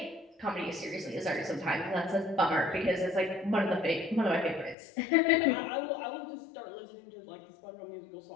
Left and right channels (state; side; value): drops out; right; at 4.8 s